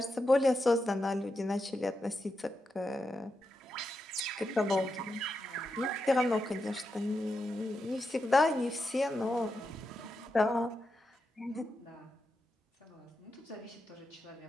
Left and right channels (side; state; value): both; normal; correlation 0.87